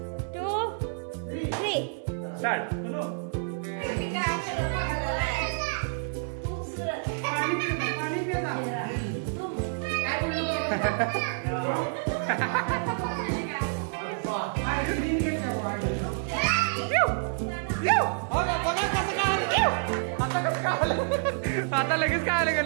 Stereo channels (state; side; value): silent; left; digital silence